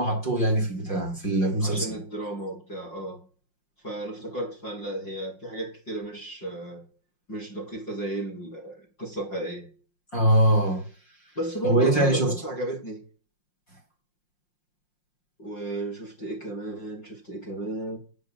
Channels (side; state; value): right; late; 5.6 ms